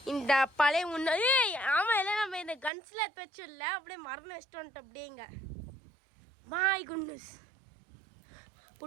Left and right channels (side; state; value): left; drops out; at 2.7 s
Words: இந்த பழைய முன்னாடி ஆமாம் எல்லாம் நம்ம இந்த கன்ஸில் எடுத்து வச்சிடல, அப்படியே மரணம் வச்சுட்டு வந்துட்டு அப்படியேங்க. மாய் குன்னஸ்